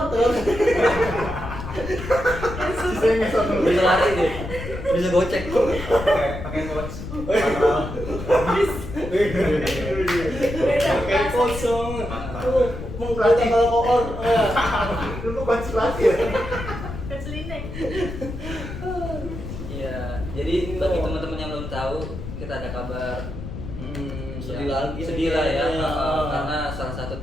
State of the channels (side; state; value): left; noise; rumble, 9 dB below the sound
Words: tuh. Sisanya nggak sama lu. Bisa lari deh. Bisa gocek. Pakai coach. beda Kayak bahasa. kosong. Tuh, mengkata kalau koor. Lu kok konsultasi ya? Keselineng. Iya. Jadi bagi teman-teman yang belum tahu, kita ada kabar. Sedih Ya, lagi. sedih lah ya, Iya. karena salah satu